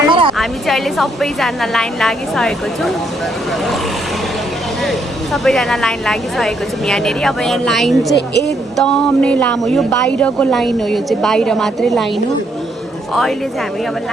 हामी चाहिँ अहिले सबैजना लाइन लागिसकेको छौँ। यहाँनिर अब यहाँ लाइन चाहिँ एकदम नै लामो, यो बाहिरको लाइन हो, यो चाहिँ बाहिर मात्रै लाइन हो। अहिले चाहिँ हामी अब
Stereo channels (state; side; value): normal; both; correlation 0.73